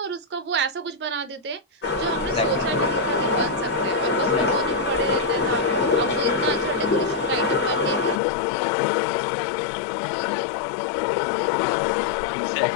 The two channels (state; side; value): drops out; right; at 8.2 s